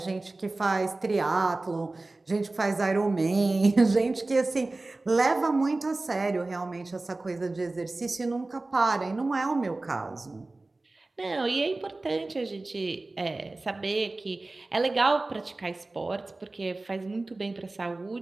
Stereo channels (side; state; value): left; quieter; 3.1 dB